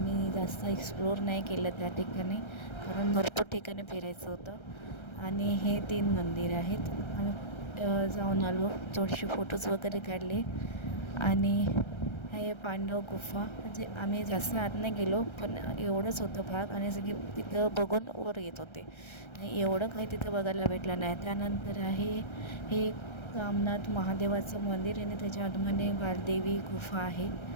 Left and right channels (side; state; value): right; late; 1.3 ms